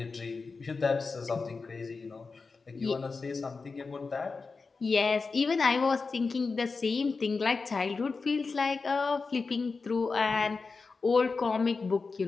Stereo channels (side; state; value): right; quieter; 4.4 dB